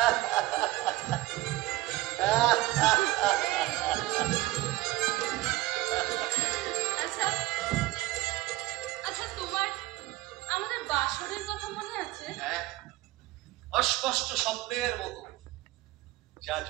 আচ্ছা আচ্ছা, তোমার আমাদের বাসরের কথা মনে আছে? হ্যাঁ, অস্পষ্ট স্বপ্নের মতো, যা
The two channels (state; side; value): quieter; left; 18.0 dB